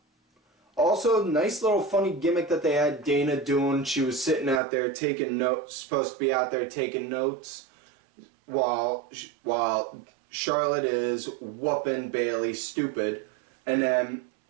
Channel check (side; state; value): left; drops out; at 4.6 s